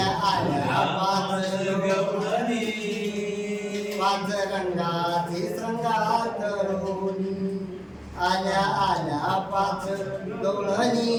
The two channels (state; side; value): identical; both; correlation 1.00